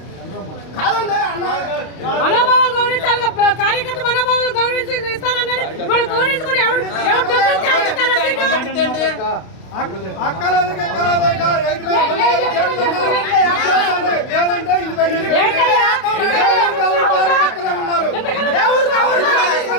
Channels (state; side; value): late; right; 32 ms